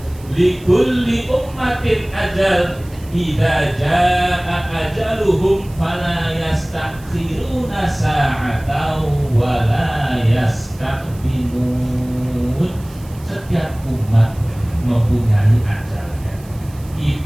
Likulli ummatin ajal, idza jaa ajaluhum fala yastakhiruna sa'atan wa la yastaqdimun. Setiap umat mempunyai ajalnya.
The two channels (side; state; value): right; noise; hiss, 24 dB below the sound